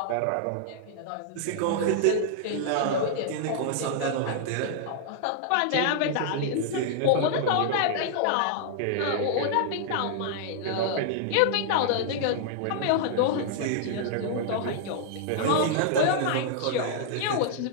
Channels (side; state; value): both; different; correlation -0.01